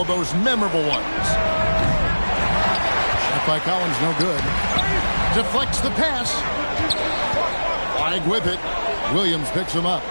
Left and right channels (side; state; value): both; inverted; correlation -1.00